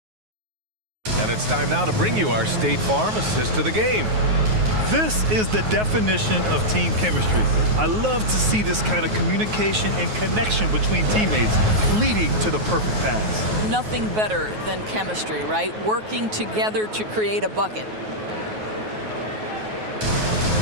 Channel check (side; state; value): left; late; 9.4 ms